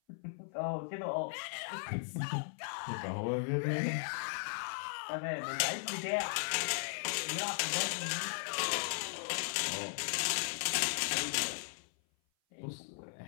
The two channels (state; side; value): silent; right; 53 dB below the other